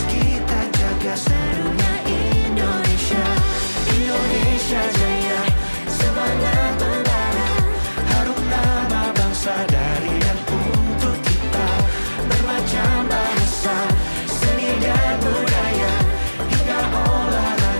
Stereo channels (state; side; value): inverted; both; correlation -1.00